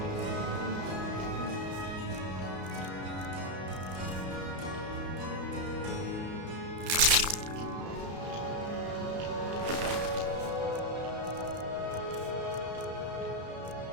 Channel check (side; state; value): left; late; 33 ms